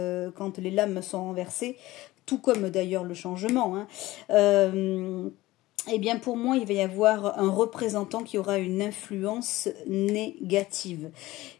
les lames sont renversées, tout comme d'ailleurs le changement, hein, eh bien, pour moi, il va y avoir un représentant qui aura une influence négative.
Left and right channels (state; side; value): quieter; right; 18.0 dB